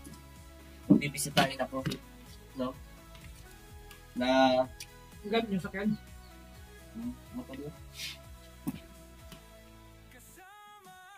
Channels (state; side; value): identical; both; correlation 1.00